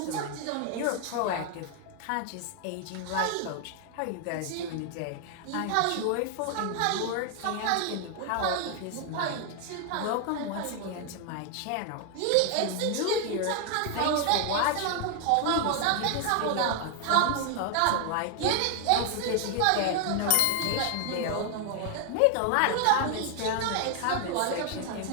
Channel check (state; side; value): different; both; correlation 0.00